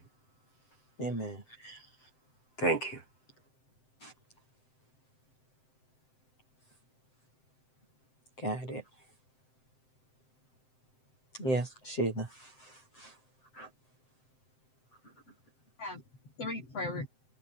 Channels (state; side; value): late; right; 7.7 ms